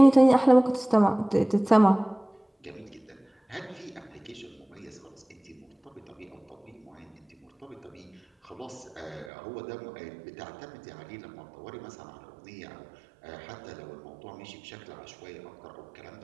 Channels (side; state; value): left; drops out; at 9.3 s